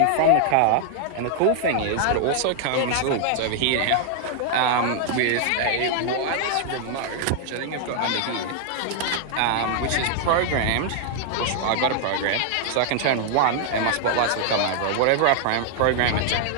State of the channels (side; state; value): both; different; correlation 0.00